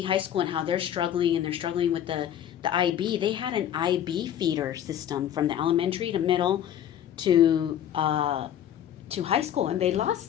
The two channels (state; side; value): quieter; right; 10.4 dB